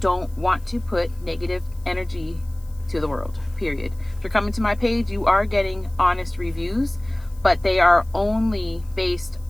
want to put negative energy to the world, period. If you're coming to my page, you are getting honest reviews, but they are only based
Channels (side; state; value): left; noise; hiss, 28 dB below the sound